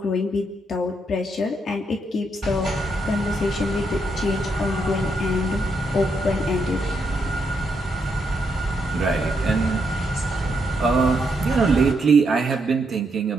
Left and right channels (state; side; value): normal; both; correlation 0.79